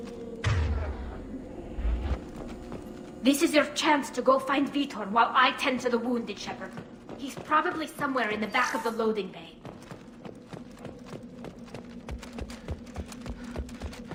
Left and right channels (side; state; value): both; identical; correlation 1.00